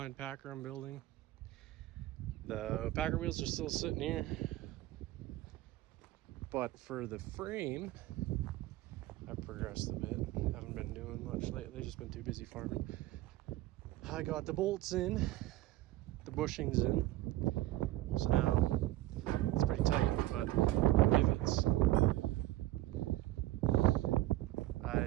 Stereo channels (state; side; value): quieter; left; 16.4 dB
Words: Packer I'm building. The Packer wheels are still sitting here, but for the frame, I've progressed a bit. Haven't been doing much lately, just been too busy farming. I got the bolts in, the bushings in, so now it's pretty tight, but rivets. I